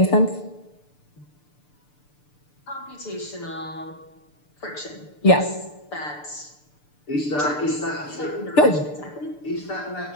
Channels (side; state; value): right; late; 6.8 ms